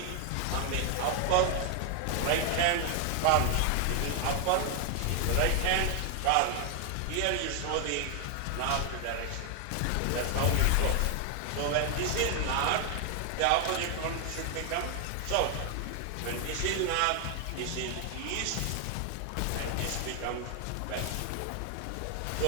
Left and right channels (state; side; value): different; both; correlation 0.00